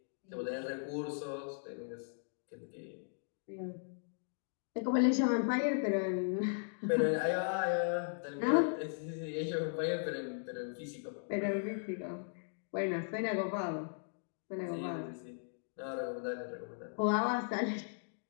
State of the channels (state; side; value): silent; right; digital silence